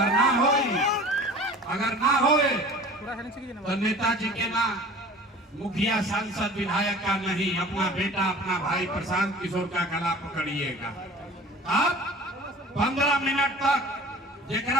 ना होए तो नेताजी के ना, मुखिया, सांसद, विधायक का नहीं, अपना बेटा, अपना भाई प्रशांत किशोर का गला पकड़िएगा। अब 15 मिनट तक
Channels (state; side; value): normal; both; correlation 0.43